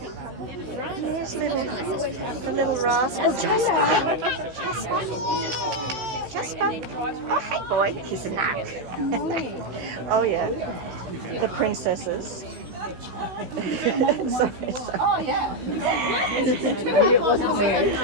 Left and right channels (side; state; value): left; late; 16 ms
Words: There's the little rascal Jasper. Jasper. Oh, hey boy. He's a nut. Oh yeah. The princesses. Oh, yeah.